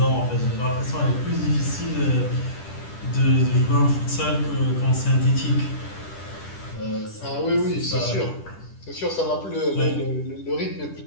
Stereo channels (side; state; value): right; late; 10 ms